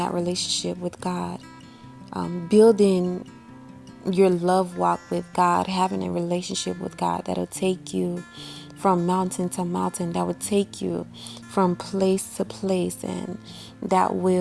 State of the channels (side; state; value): both; identical; correlation 1.00